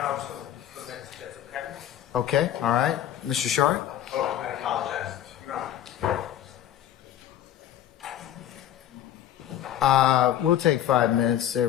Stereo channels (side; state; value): right; quieter; 11.5 dB